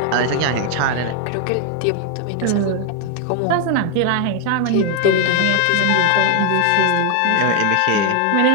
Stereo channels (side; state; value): both; different; correlation 0.00